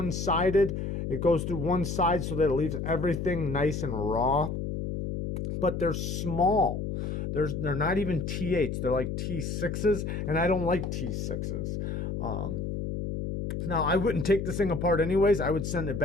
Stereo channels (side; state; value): left; noise; hum, 3 dB below the sound